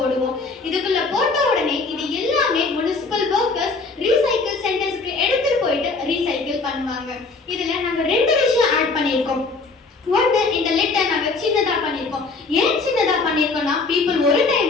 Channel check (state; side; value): quieter; right; 3.9 dB